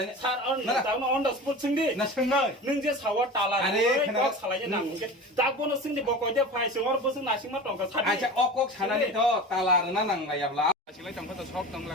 सर दाउन अन द स्पॉट सोंदि ना सोंनाय नों जे सावा ताला কক सालायनो नांगे दागबोनो सोंदि कयटा फाइ सोर बोसों नासिं मा टंका सादि आचा अকক सानानि तो ताला ना नांलायाब्ला आसिलाय तंखो सब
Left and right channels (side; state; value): both; normal; correlation 0.33